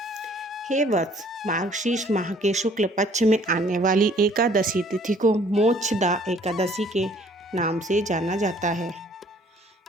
हे वत्स, मार्गशीर्ष माह के शुक्ल पक्ष में आने वाली एकादशी तिथि को मोक्षदा एकादशी के नाम से जाना जाता है।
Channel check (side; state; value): both; normal; correlation 0.58